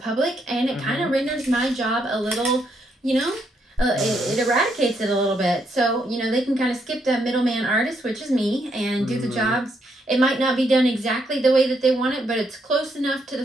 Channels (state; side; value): normal; both; correlation 0.76